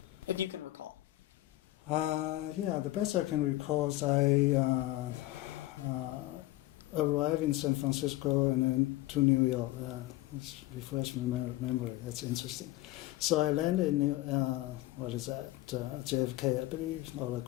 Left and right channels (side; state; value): right; quieter; 17.3 dB